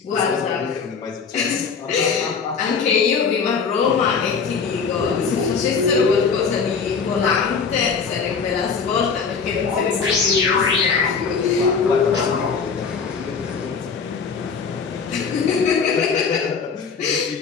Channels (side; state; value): right; quieter; 5.7 dB